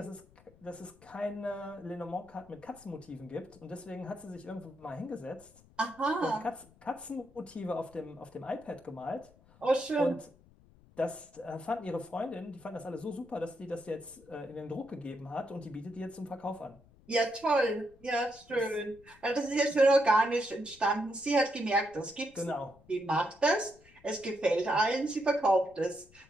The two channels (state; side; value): noise; left; rumble, 26 dB below the sound